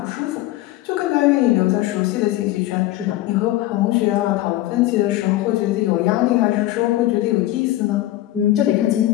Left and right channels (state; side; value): quieter; right; 15.8 dB